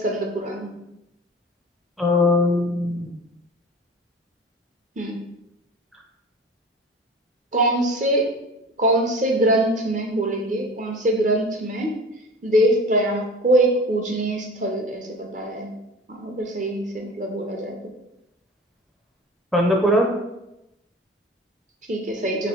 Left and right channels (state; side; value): normal; both; correlation 0.38